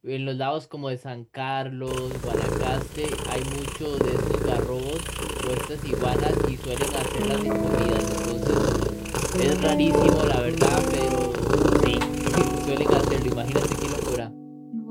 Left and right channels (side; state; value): both; identical; correlation 1.00